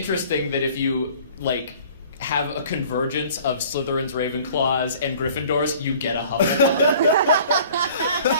that if you like have a convergence of Slytherins, Ravenclaws, and Gryffindors, you get a Hufflepuff.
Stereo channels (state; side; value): inverted; both; correlation -0.50